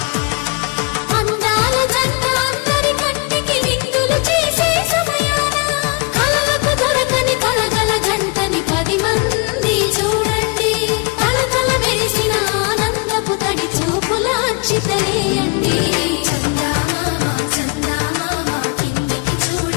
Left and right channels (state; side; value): quieter; right; 30.8 dB